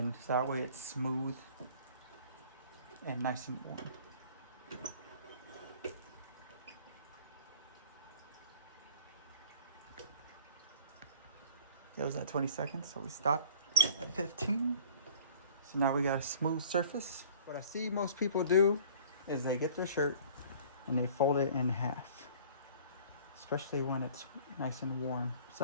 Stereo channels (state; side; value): inverted; both; correlation -0.50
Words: so that way it's smooth and nice and warm. It was at 20 seconds, so we stopped at 15. So now we got a smooth surface. What I see most people do is they get their shirt and they fold it in half, especially when it's nice and warm. So